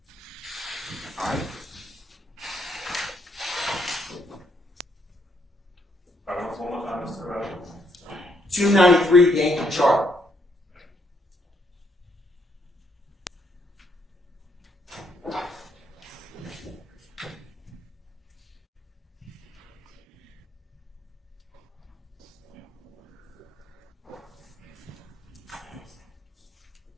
All right. 293 Yankee chart.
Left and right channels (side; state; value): both; normal; correlation 0.73